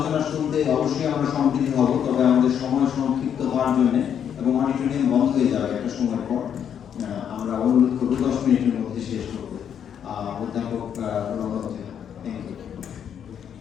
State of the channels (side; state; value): right; quieter; 8.6 dB